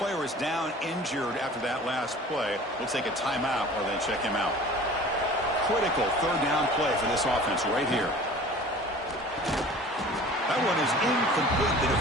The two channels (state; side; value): normal; both; correlation 0.44